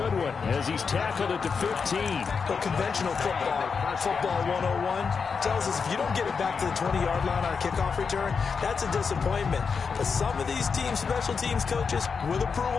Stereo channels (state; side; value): quieter; right; 5.6 dB